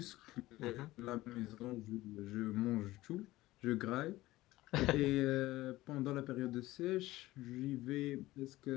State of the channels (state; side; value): quieter; right; 17.5 dB